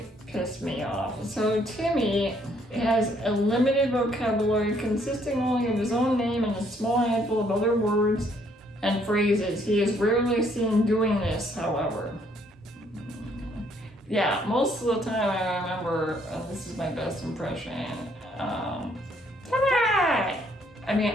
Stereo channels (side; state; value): both; normal; correlation 0.67